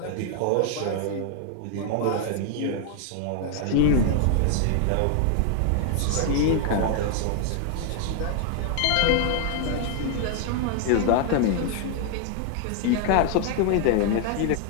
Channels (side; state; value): both; different; correlation 0.00